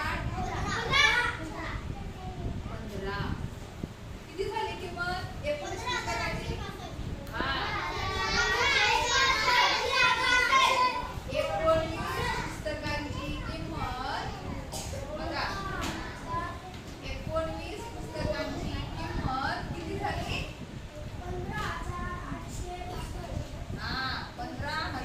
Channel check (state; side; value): identical; both; correlation 1.00